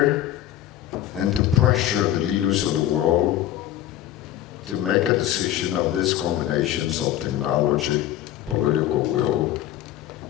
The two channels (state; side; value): quieter; right; 12.5 dB